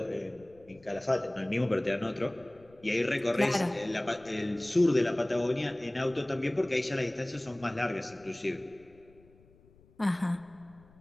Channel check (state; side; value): noise; left; rumble, 27 dB below the sound